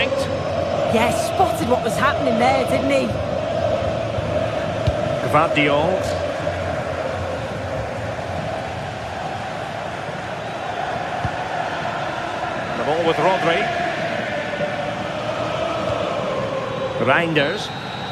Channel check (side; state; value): both; identical; correlation 1.00